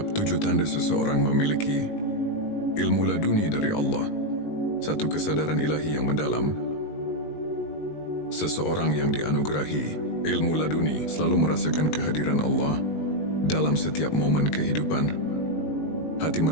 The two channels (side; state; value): right; late; 19 ms